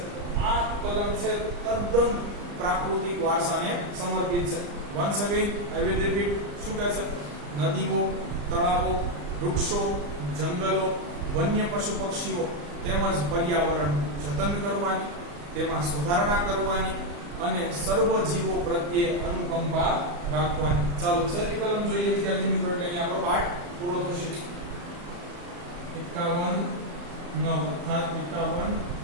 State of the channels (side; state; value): left; late; 34 ms